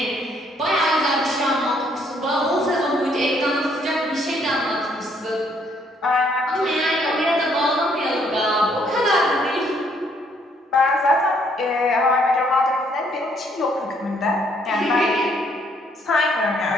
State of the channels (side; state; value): both; normal; correlation 0.67